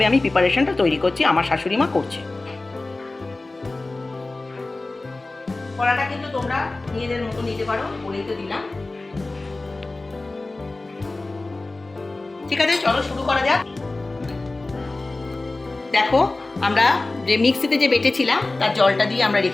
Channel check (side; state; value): right; quieter; 3.1 dB